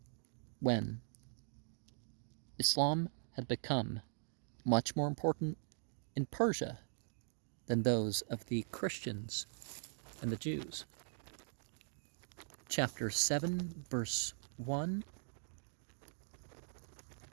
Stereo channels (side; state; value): left; silent; digital silence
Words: when Islam had become much more important in Persia than those of the Christians and the Jews. Chapter 7, verse 1.